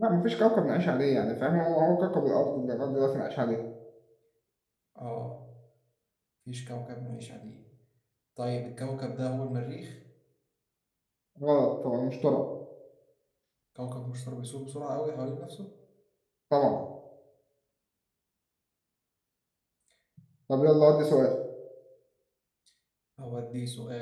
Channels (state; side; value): identical; both; correlation 1.00